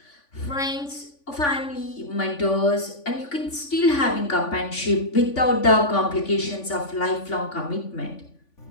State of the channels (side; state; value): right; late; 3.5 ms